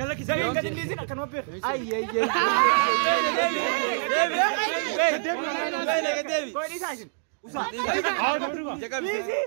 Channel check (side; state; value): left; silent; digital silence